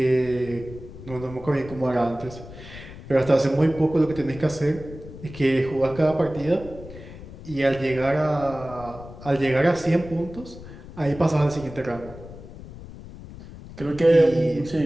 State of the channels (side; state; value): left; noise; rumble, 15 dB below the sound